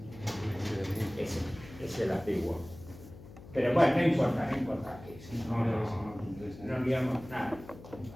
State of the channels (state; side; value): noise; left; hum, 17 dB below the sound